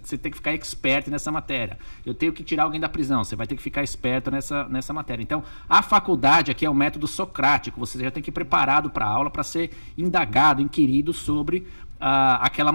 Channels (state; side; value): inverted; both; correlation -1.00